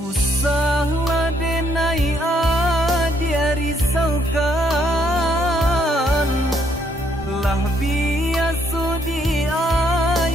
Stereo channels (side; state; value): both; normal; correlation 0.70